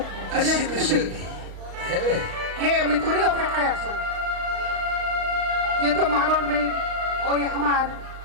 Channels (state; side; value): late; left; 35 ms